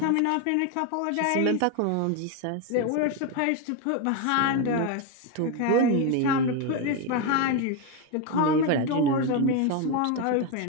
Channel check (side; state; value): both; different; correlation 0.02